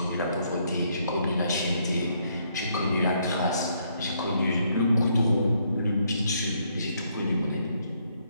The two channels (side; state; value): both; inverted; correlation -0.72